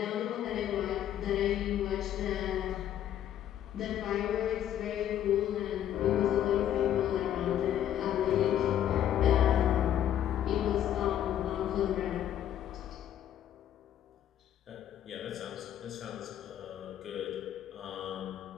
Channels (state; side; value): quieter; right; 10.9 dB